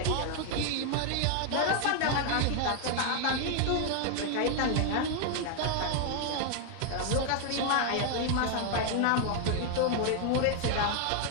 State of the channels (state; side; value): different; both; correlation 0.00